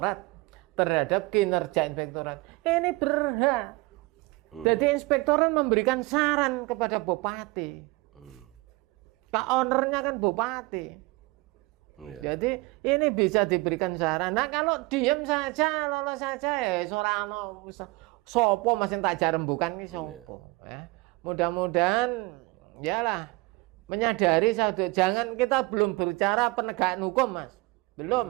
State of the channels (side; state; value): left; quieter; 24.1 dB